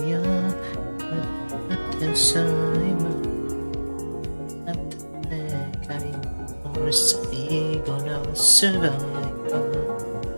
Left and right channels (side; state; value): both; inverted; correlation -1.00